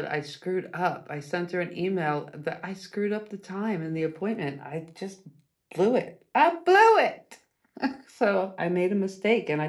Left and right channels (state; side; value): identical; both; correlation 1.00